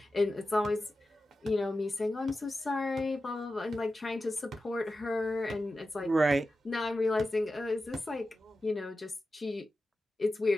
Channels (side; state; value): both; normal; correlation 0.93